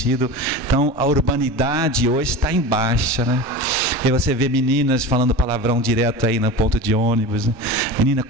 Então a urbanidade hoje está em baixa, né? E você vê meninas falando palavrão direto aí no ponto de ônibus, né? Menina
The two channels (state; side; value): normal; both; correlation 0.30